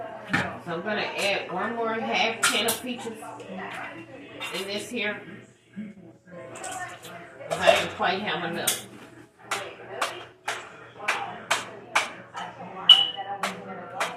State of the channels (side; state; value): both; identical; correlation 1.00